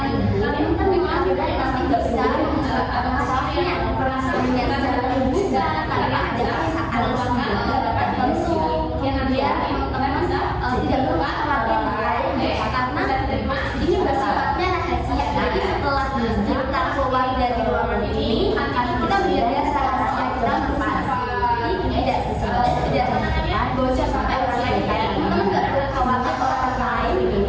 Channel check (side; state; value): both; identical; correlation 1.00